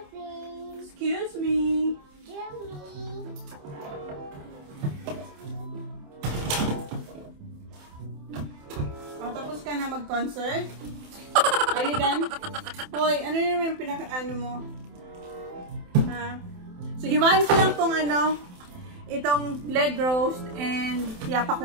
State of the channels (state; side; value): late; left; 27 ms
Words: Excuse me. Tapos ka na mag-concert? Are you done? Hoy, ano naman yung pinaka-ano mo? Ha? So, hiwain ko lang tong itong leg roast and